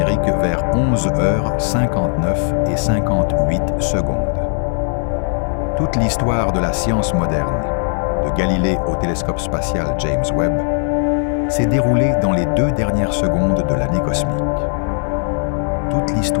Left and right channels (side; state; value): right; silent; 56 dB below the other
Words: vers 11h59 et 58 secondes. Toute l'histoire de la science moderne, de Galilée au télescope spatial James Webb, s'est déroulée dans les 2 dernières secondes de l'année cosmique. Toute